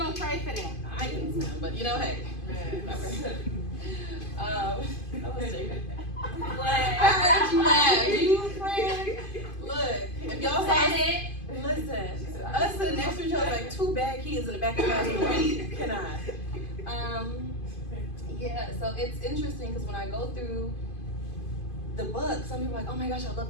pray for them. I can swim, but hey. I was joking. I heard you laugh. You friend. Look, if y'all saw it, listen. Us sitting next to each other like 2 bad kids in the back of the class. We cannot. Yeah. So it's interesting because when I go through the book, some people are like, oh my gosh, I love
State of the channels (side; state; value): right; late; 2.5 ms